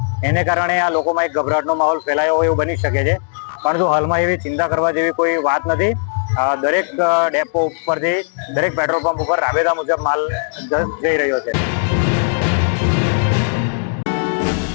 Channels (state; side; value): silent; right; digital silence